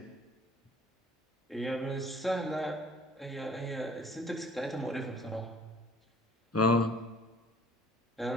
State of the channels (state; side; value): normal; both; correlation 0.53